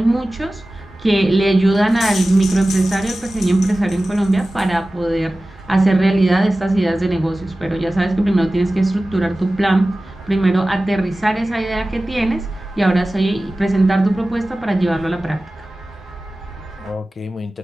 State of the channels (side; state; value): both; normal; correlation 0.96